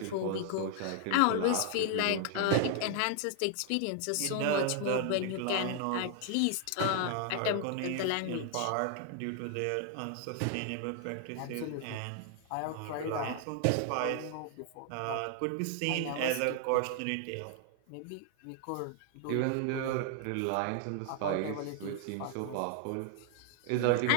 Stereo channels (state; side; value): different; both; correlation 0.00